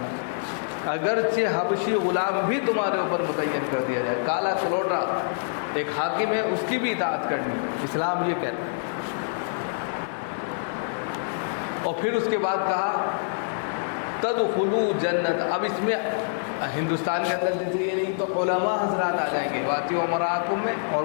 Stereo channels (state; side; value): silent; right; digital silence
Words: اگرچہ حبشی غلام بھی تمہارے اوپر متعین کر دیا جائے، کالا کلوٹا ایک حاکم ہے، اس کی بھی اطاعت کرنی، اسلام یہ کہتا ہے۔ اور پھر اس کے بعد کہا تدخلوا جنت۔ اب اس میں ہندوستان کے اندر جیسے یہ نہیں تو علماء حضرات آ جائیں گے، وَآتِیعُوا أُمَرَاءَکُم میں